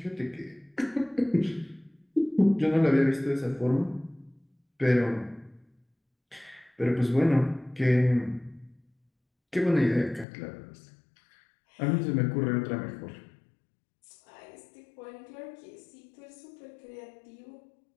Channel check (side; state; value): right; drops out; at 10.2 s